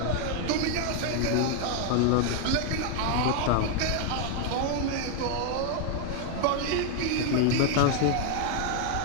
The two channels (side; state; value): both; different; correlation 0.00